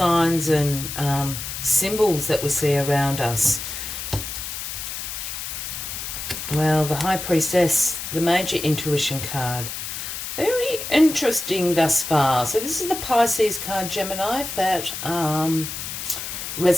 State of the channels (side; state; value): left; noise; hiss, 6 dB below the sound